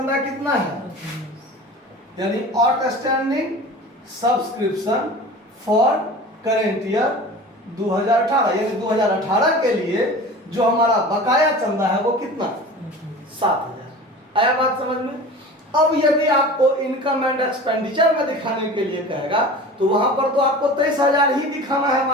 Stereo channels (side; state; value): both; normal; correlation 0.37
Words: कितना है, यानी outstanding subscription for current year 2018, यानी 2018 के लिए जो हमारा बकाया चंदा है वो कितना, 7,000। आया बात समझ में। अब यदि आपको इनकम एंड एक्सपेंडिचर में दिखाने के लिए कहेगा तो वहां पर तो आपको 23,000 ही दिखाना है,